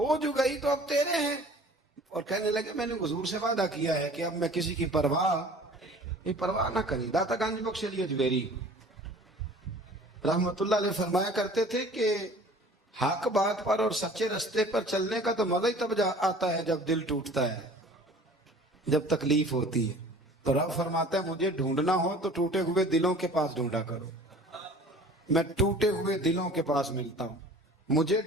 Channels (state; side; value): normal; both; correlation 0.46